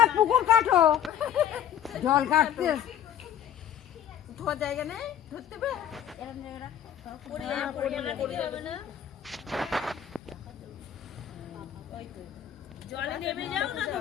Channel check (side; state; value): right; quieter; 9.8 dB